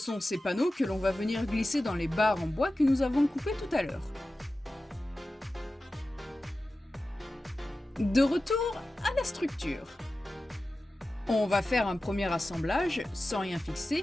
ces panneaux que l'on va venir glisser dans les barres en bois que nous avons coupées tout à l'heure. De retour à la structure. On va faire un premier assemblage sans rien fixer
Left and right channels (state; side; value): normal; both; correlation 0.94